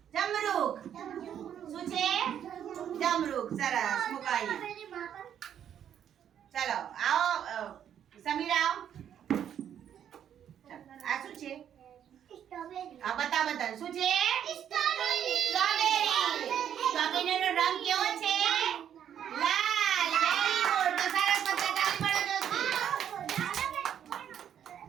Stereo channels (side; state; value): left; quieter; 9.5 dB